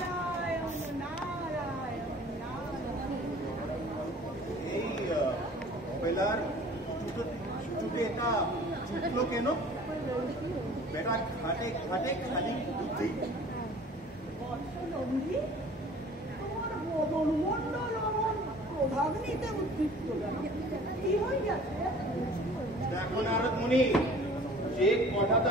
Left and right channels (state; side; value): normal; both; correlation 0.48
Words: এই বেলার চুটে এটা চুটলো কেন? বেটা ঘাটে ঘাটে খালি বুদ্ধি। দেখো নারদ মুনি, যে